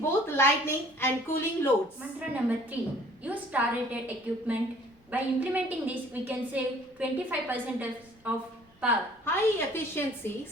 both lighting and cooling loads. Mantra number 3. Use star-rated equipment. By implementing this, we can save 25% of power. High efficiency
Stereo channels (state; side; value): normal; both; correlation 0.54